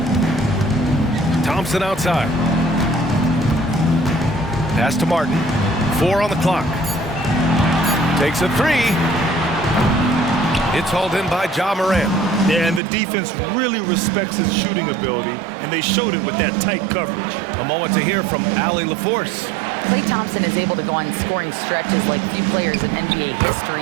Thompson outside. Pass to Martin. 4 on the clock. Takes a 3. It's hauled in by Ja Morant. Yeah, and the defense really respects his shooting ability, and they showed it with that tight coverage. A moment to hear from Allie LaForce. Klay Thompson is able to go on scoring stretches like few players in NBA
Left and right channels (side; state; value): left; drops out; at 12.8 s